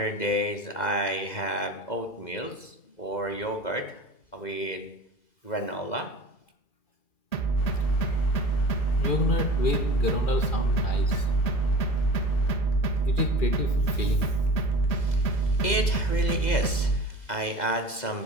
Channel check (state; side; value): late; right; 2.0 ms